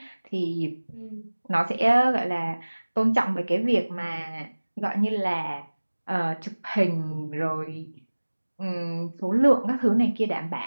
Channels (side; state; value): both; inverted; correlation -1.00